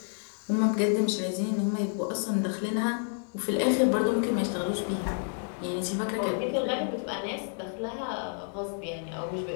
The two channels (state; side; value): silent; right; 58 dB below the other